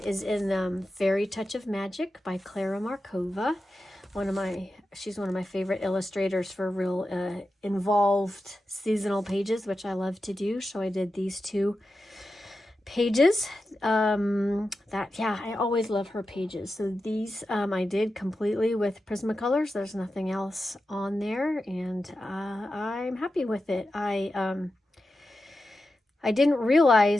is in Fairy Touch of Magic by Clara Markova. She's one of my favorite illustrators for real involved seasonal pages, which I love to do. So I did these two pages. I always love her pages. So these I did completely with Prismacolors. There's nothing else on there, and I'm happy with it. I didn't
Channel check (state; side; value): normal; both; correlation 0.91